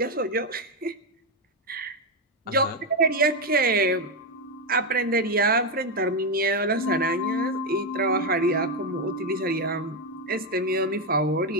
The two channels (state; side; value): normal; both; correlation 0.07